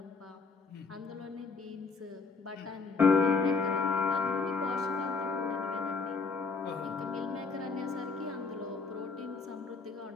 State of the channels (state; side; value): quieter; right; 4.5 dB